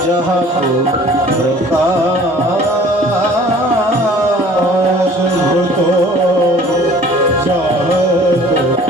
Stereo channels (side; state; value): both; normal; correlation 0.50